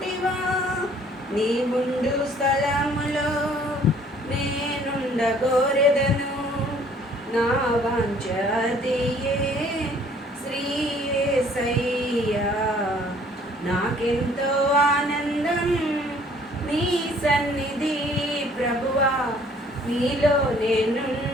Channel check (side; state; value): both; normal; correlation 0.58